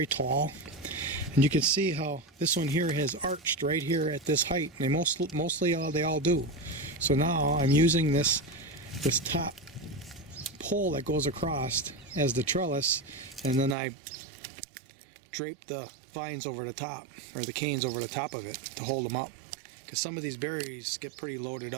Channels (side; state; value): left; drops out; at 13.8 s